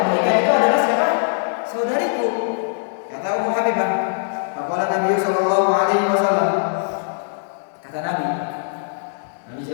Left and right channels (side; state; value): right; silent; digital silence